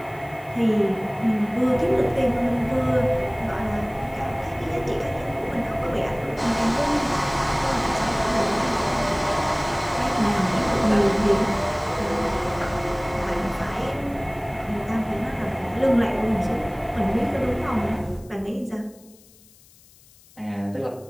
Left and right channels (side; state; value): left; noise; hiss, 27 dB below the sound